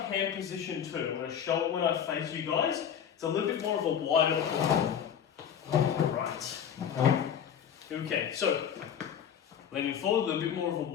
position too. When I face you guys, it's a little bit more of a wider pull. Right. Okay, so leaning forward, a little bit more of a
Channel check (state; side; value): quieter; right; 8.6 dB